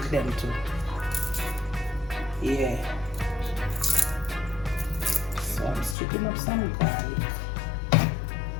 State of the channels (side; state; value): right; drops out; at 6.0 s